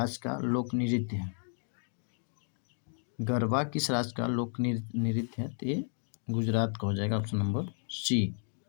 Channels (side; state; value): right; silent; 56 dB below the other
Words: का लोक नृत्य है? गरबा किस राज्य का लोक नृत्य है? तो ये गुजरात का हो जाएगा, ऑप्शन नंबर सी।